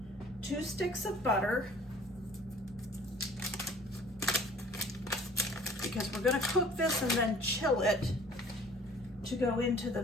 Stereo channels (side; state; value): both; normal; correlation 0.51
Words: 2 sticks of butter, because we're going to cook this and then chill it to go into the